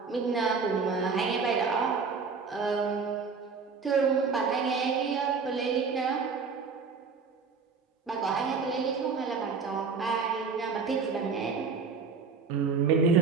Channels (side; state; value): left; quieter; 5.2 dB